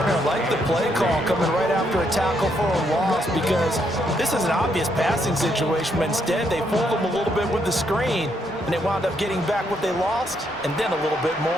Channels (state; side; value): normal; both; correlation 0.75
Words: I like the play call coming right after a tackle for a loss because this is an obvious passing situation, but instead they fooled them a little bit with the screen, and they wound up getting back what they lost and then a little bit